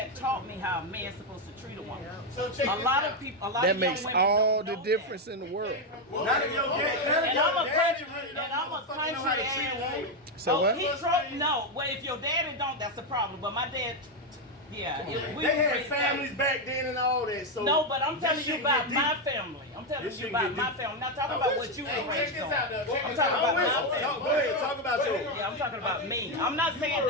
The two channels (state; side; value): normal; both; correlation 0.05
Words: taught me how a man's supposed to treat a woman. So check A this lot out. of people, a lot That of young makes women all don't the know difference in the world. Not if your dad, And I'm a country, really and I'm a fucking know how country to treat a ass. woman. So what? He no. Well, if your daddy don't, that's a problem. But my dad, yeah, we They had raised families back then and all that. So No, but I'm this telling you shit about get my deep. family. I'm telling This you shit about get my deep. family. I'm not talking about what you were Hey, check raised this on. out, though. Check I'm this talking out. about I'm with my you. family. Go ahead, talk about yours. Yeah, I'm talking about me. I'm not saying